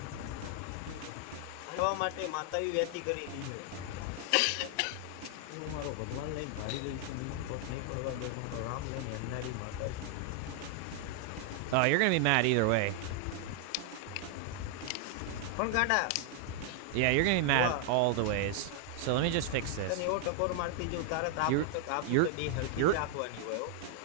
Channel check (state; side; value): different; both; correlation 0.00